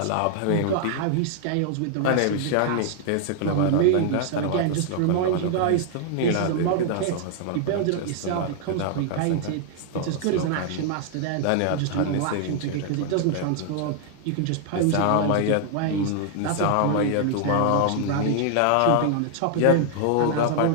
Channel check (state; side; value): different; both; correlation 0.00